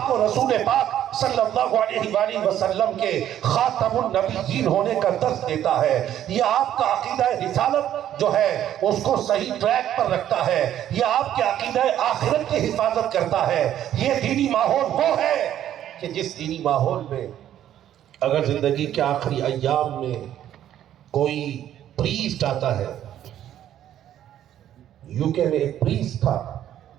کو رسول پاک صلی اللہ علیہ وآلہ وسلم کے خاتم النبیین ہونے کا درس دیتا ہے، یہ آپ کا عقیدہ رسالت جو ہے اس کو صحیح ٹریک پر رکھتا ہے، یہ آپ کے عقیدہ آخرت کی حفاظت کرتا ہے۔ یہ دینی ماحول وہ ہے کہ جس دینی ماحول میں اگر زندگی کے آخری ایام میں کوئی پریسٹ آتا ہے، یوکے میں ایک پریسٹ تھا،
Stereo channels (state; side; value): quieter; left; 11.3 dB